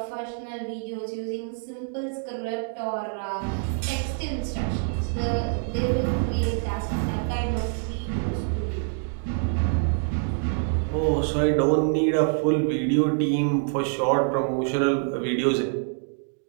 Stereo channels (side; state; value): left; silent; 61 dB below the other